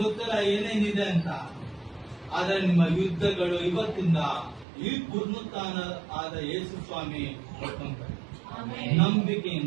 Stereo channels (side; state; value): left; drops out; at 4.7 s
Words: ಗೊತ್ತಿಲ್ಲ ಏನೇನಿದೆ ಅಂತ, ಆದ್ರೆ ನಿಮ್ಮ ಯುದ್ಧಗಳು ಇವತ್ತಿಂದ ಈ ಪುನರುತ್ಥಾನ ಆದ ಯೇಸು ಸ್ವಾಮಿ ಕೊಡ್ಕೊಂತಾರೆ.